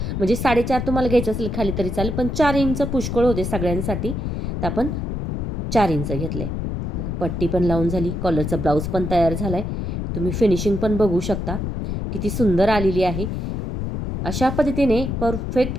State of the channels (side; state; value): left; noise; rumble, 3 dB below the sound